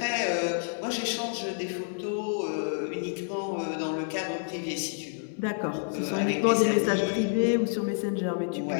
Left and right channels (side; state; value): right; silent; 59 dB below the other